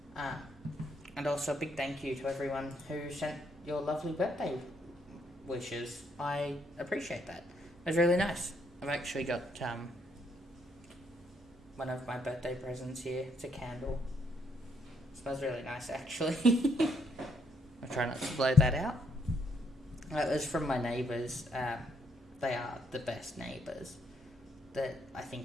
And also a big thank you to everyone who sent your lovely birthday wishes. I appreciate that. It was really nice. I've actually got one of my birthday presents here. It's a candle. It smells really nice, actually. I'll try not to blow that out. It was from my neighbours. They are the best neighbours that I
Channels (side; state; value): both; normal; correlation 0.73